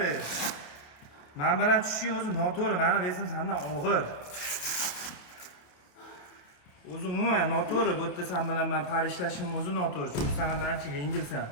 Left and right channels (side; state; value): right; late; 28 ms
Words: Men bilan tushishing o'zi noto'g'ri. Meni vesim sendan og'ir. O'zi umuman noto'g'ri. Bu yerda sen bilan men parishlashim o'zi noto'g'ri. Chunki sen mendan ancha yengilsan.